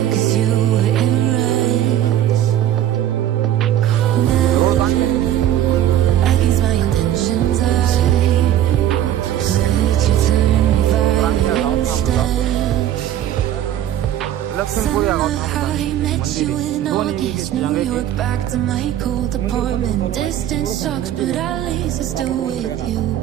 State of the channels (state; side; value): quieter; left; 11.7 dB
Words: Back to my cold apartment. Distance sucks, but at least I'm still with you.